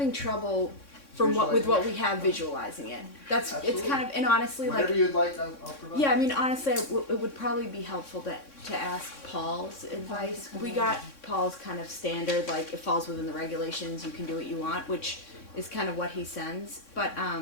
trouble with what we have visualizing it. It's Absolutely. kind of, and honestly, like, Whatever you'd like, I'll provide. yeah, I mean, honestly, it would probably be helpful to ask Paul's advice. We got Paul's kind of standard, like, it falls within the regulations, you can do what you want, which is kind of what he sends, but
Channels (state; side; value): late; right; 3.6 ms